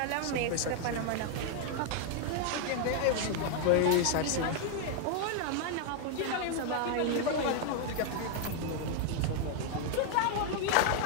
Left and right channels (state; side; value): different; both; correlation 0.00